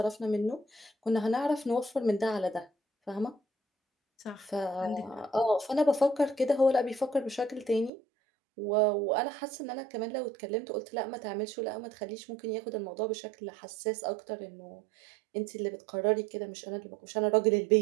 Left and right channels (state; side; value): drops out; left; at 7.9 s